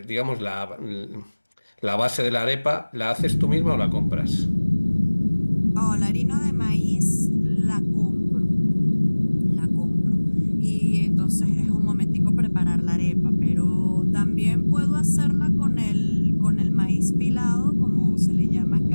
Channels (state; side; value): inverted; both; correlation -1.00